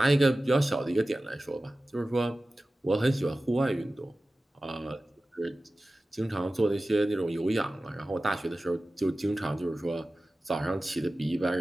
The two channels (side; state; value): both; normal; correlation 0.96